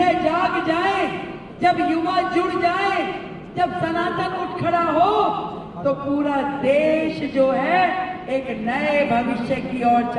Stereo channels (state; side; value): identical; both; correlation 1.00